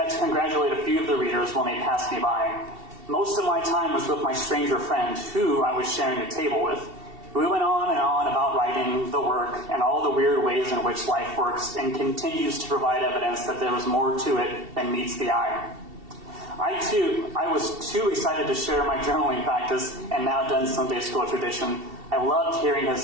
to congratulate a few of the readers when they passed me by. Most of my time was with my stranger friend, who I was sharing a table with. We went on and on about writing, the work, and all the weird ways in which life works and continues to provide evidence that there is more to it than meets the eye. I was too excited to share my journaling practice and now done Sunday school tradition. I loved hearing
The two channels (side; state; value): left; late; 2.7 ms